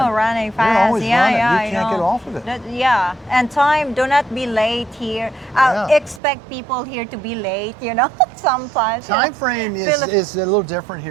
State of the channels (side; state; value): left; drops out; at 6.2 s